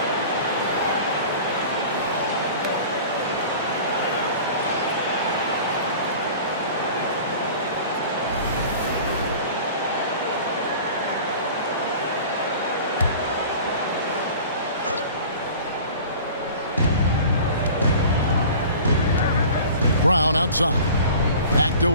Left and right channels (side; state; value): both; inverted; correlation -0.42